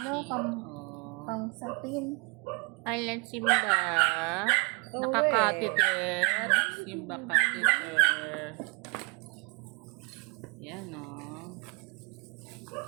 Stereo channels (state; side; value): quieter; left; 28.9 dB